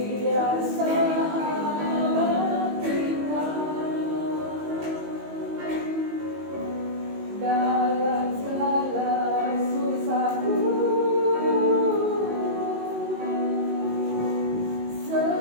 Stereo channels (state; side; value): late; left; 19 ms